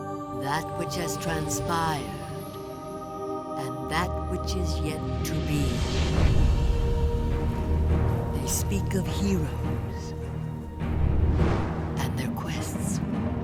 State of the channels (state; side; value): identical; both; correlation 1.00